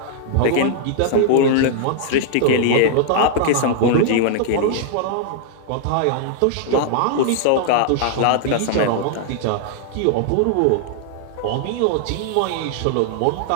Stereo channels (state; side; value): different; both; correlation -0.01